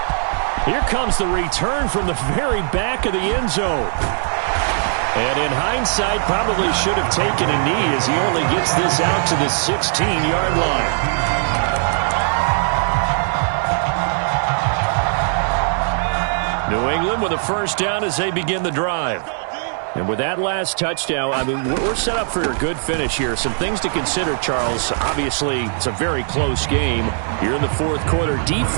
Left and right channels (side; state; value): left; silent; digital silence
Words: Here comes the return from the very back of the end zone. And in hindsight, probably should have taken a knee as he only gets this out to the 16-yard line. New England with a first down as they begin the drive. And with that last touchdown, I mean, we're set up for a good finish here. Some things to consider, Charles. Obviously, it's a very close game. Here in the 4th quarter,